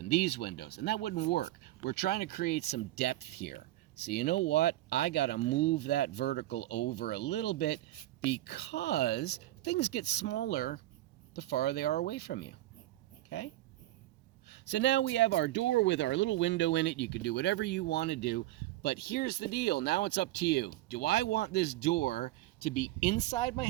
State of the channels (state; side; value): quieter; left; 15.9 dB